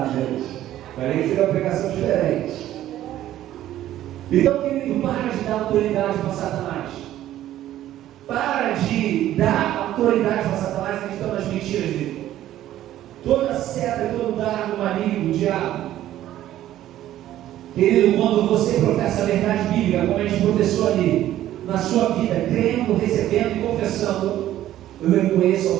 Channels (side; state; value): left; quieter; 13.1 dB